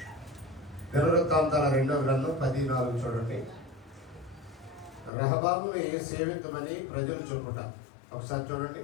దినవృత్తాంతాల 2వ గ్రంథం 14 చూడండి. రెహబాముని సేవించమని ప్రజలు చెప్పుట. ఒకసారి చూడండి.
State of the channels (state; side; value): drops out; right; at 5.1 s